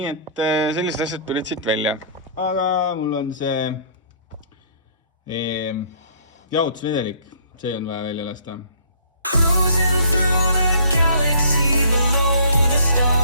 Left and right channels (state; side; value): inverted; both; correlation -0.55